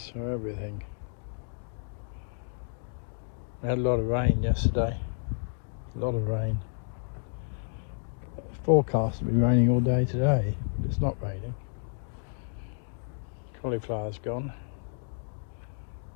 for everything. We had a lot of rain yesterday. A lot of rain. Forecast to be raining all day today, but it's not raining. Cauliflower's gone.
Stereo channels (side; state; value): right; silent; digital silence